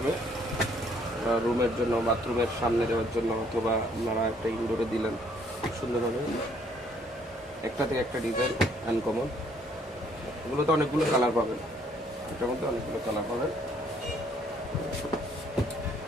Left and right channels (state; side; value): normal; both; correlation 0.64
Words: রুমের জন্য, বাথরুমের সামনে দেওয়ার জন্য, অথবা আপনারা একটা ইনডোরে দিলেন, খুব সুন্দর হবে। একটা থেকে একটা ডিজাইন আনকমন। এগুলোতে অনেকগুলো কালার পাবেন, এটার মধ্যে অনেকগুলো কালার পাবেন।